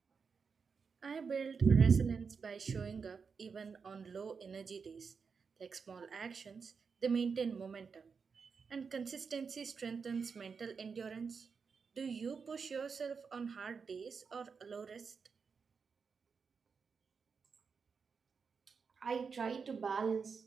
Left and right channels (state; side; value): quieter; left; 5.5 dB